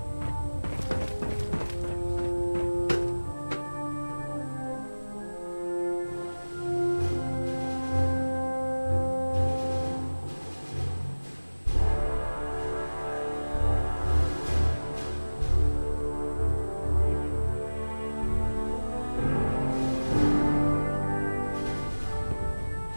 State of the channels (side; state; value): both; inverted; correlation -1.00